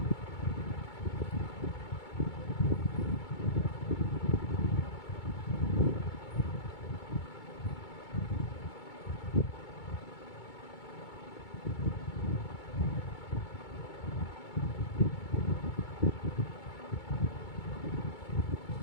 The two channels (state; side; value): late; right; 2.2 ms